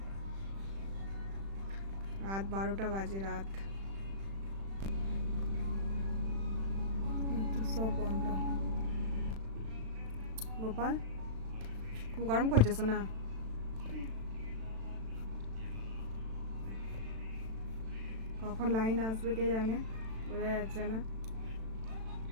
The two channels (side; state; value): left; late; 36 ms